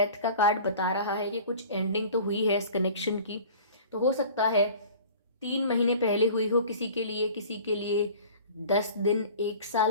का कार्ड बता रहा है कि कुछ एंडिंग तो हुई है इस कनेक्शन की, तो हो सकता है 3 महीने पहले हुई हो किसी के लिए 10 दिन 1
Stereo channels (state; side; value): inverted; both; correlation -0.44